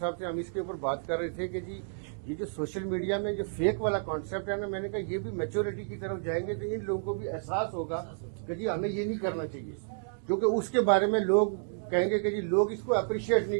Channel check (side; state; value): left; silent; digital silence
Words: صاحب سے ہم اس کے اوپر بات کر رہے تھے کہ جی یہ جو سوشل میڈیا میں جو فیک والا کانسیپٹ ہے نا، میں نے کہا یہ بھی میچورٹی کی طرف جائیں گے تو ان لوگوں کو بھی احساس ہوگا کہ جی ہمیں یہ نہیں کرنا چاہیے، کیونکہ اس کے بارے میں لوگ کہیں گے کہ جی لوگ اس کو اپریشیٹ